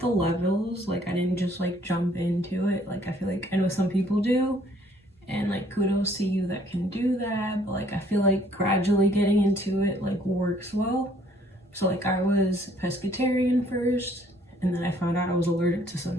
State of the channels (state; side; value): normal; both; correlation 0.61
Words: the levels, I didn't just jump into it. I feel I know some people do, and kudos to you that can do that, but I feel gradually getting into it works well. So I was pescatarian first, and then I found out I was allergic to